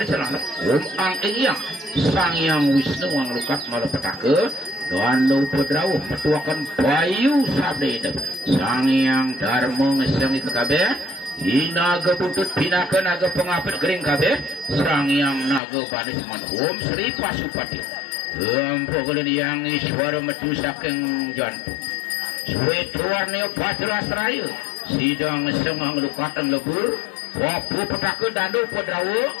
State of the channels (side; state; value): right; drops out; at 15.6 s